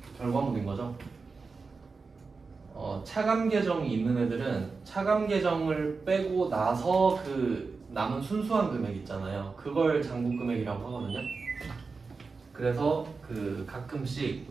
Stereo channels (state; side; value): quieter; left; 4.5 dB